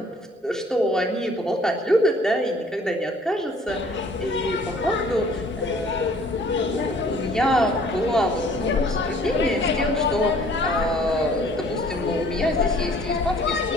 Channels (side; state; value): both; normal; correlation 0.55